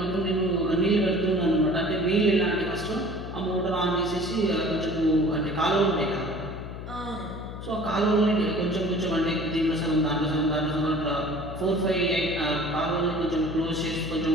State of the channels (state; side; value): noise; left; hum, 10 dB below the sound